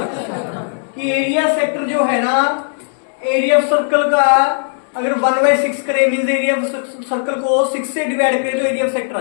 कि area sector जो है ना, एरिया ऑफ सर्कल का अगर 1/6 करे मीन्स एरिया ऑफ सर्कल को 6 से डिवाइड करे तो एरिया ऑफ सेक्टर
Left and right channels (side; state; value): right; silent; digital silence